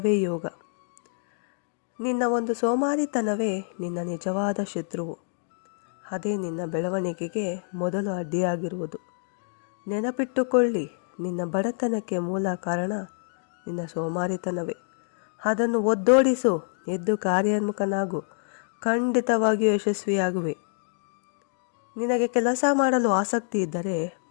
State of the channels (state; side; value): silent; right; digital silence